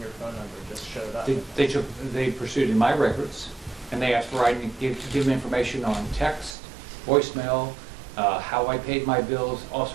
phone number just showed up? They pursued in my records, and they asked for I to give them information on text, voicemail, how I paid my bills, all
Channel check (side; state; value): left; drops out; at 6.6 s